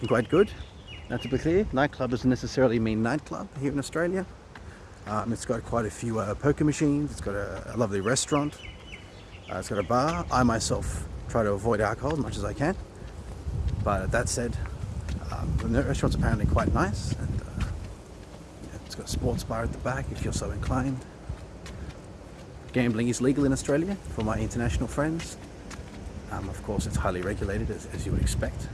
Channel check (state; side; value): identical; both; correlation 1.00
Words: quite good. Now, to be clear, nightclub doesn't necessarily mean nightclub here in Australia. It's got quite a few poker machines. It's got a lovely restaurant. It's got a bar. I myself try to avoid alcohol as much as I can. But that said, the restaurant's apparently quite nice, and it's got a sports bar at the back if you're so inclined. Gambling is legal in Australia for my international friends. Of course, it's highly regulated, as you would expect.